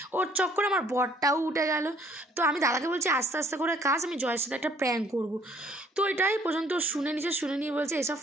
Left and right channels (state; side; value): normal; both; correlation 0.60